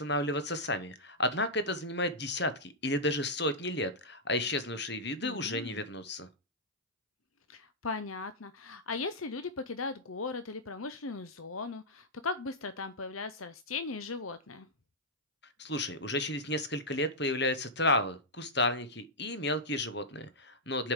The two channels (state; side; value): normal; both; correlation -0.09